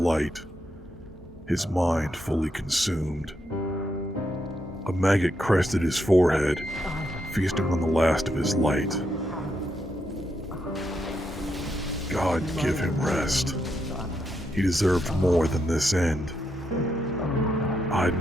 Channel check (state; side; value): normal; both; correlation 0.81